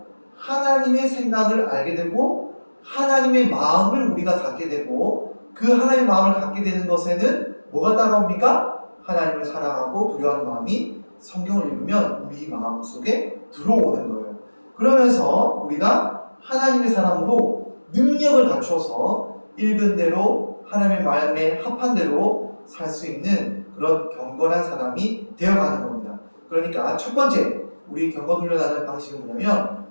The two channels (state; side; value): inverted; both; correlation -1.00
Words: 하나님의 생각을 알게 되고 하나님의 마음을 우리가 갖게 되고 그 하나님의 마음을 갖게 되는 것에는 뭐가 따라옵니까? 하나님을 사랑하고 두려워하는 마음이 성경을 읽으면 우리 마음 속에 들어오는 거예요. 그러면서 우리가 하나님의 사람으로 능력을 갖춰서 읽은 대로 하나님의 마음에 합한 대로 살 수 있는 그런 경건한 사람이 되어가는 겁니다. 그러니까 첫 번째 우리 경건 훈련하는 방식은 뭐냐면